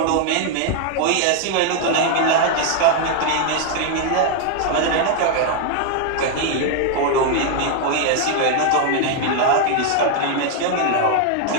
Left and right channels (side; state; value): both; different; correlation 0.00